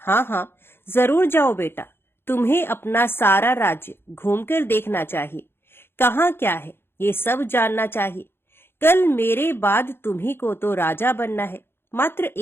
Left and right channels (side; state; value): right; late; 0.11 ms